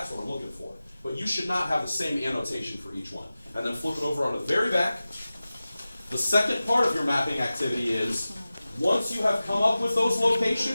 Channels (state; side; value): inverted; both; correlation -0.96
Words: what I'm looking for. But you should not have the same annotation for each one. And then flip it over on the very back. The second part of your mapping activity is, once you have come up with those